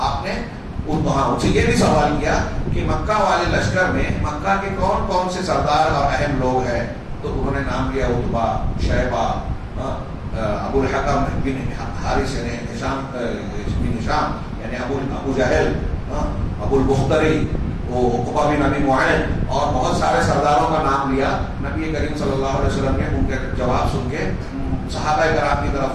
نے ان سے یہ بھی سوال کیا کہ مکہ والے لشکر میں مکہ کے کون کون سے سردار اور اہم لوگ ہیں؟ تو انہوں نے نام لیا عتبہ, شیبہ, ابو الحکم بن حارث نے, ہشام بن ہشام یعنی ابو جہل, ابو البختری, عقبہ بن ابی معین, اور بہت سارے سرداروں کا نام لیا. نبی کریم صلی اللہ علیہ وسلم نے ان کے جواب سن کے صحابہ کرام کی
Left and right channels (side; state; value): both; identical; correlation 1.00